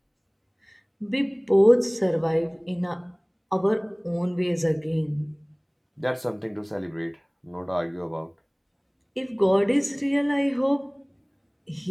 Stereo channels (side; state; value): both; identical; correlation 1.00